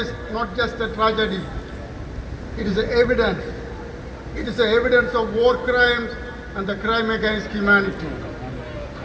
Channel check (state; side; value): identical; both; correlation 1.00